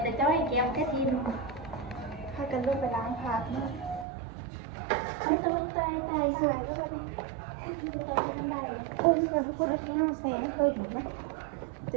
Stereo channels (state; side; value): drops out; left; at 4.0 s